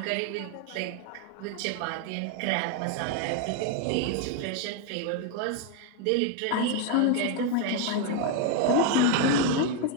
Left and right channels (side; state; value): both; different; correlation 0.01